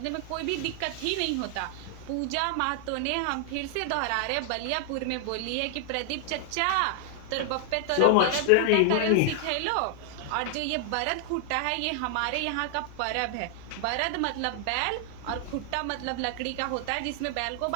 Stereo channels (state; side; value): different; both; correlation 0.00